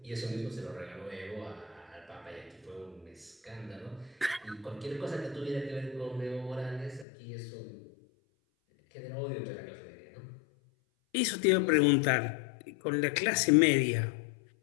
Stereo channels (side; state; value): right; drops out; at 7.1 s